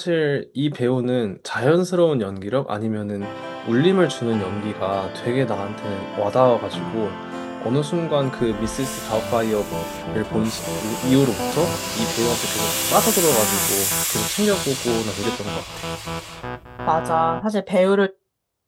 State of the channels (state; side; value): identical; both; correlation 1.00